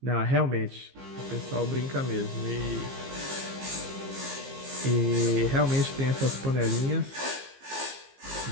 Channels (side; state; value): left; late; 15 ms